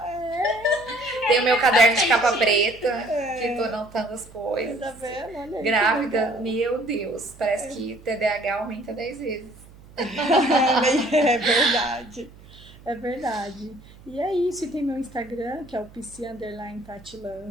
Tenho meu caderno de capa preta, que tô anotando as coisas. Tá vendo? Olha aí, que Grávida, legal. meu Deus. Parece que TDAH aumenta 10 vezes. É verdade. É verdade. E é isso. E tem meu Instagram, que é o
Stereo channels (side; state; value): right; noise; hum, 22 dB below the sound